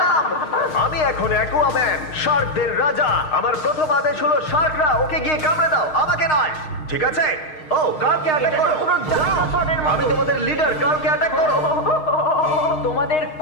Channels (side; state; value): right; late; 6.5 ms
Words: আমি এখন অ্যাকুয়াম্যান, শার্কদের রাজা। আমার প্রথম আদেশ হলো শার্করা ওকে গিয়ে কামড়ে দাও, আমাকে নয়। ঠিক আছে? ও কালকে অ্যাটাক করো। আমি তোমাদের লিডার, কালকে অ্যাটাক করো। তোমাদের